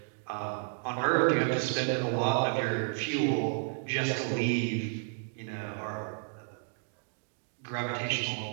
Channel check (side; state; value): left; silent; 57 dB below the other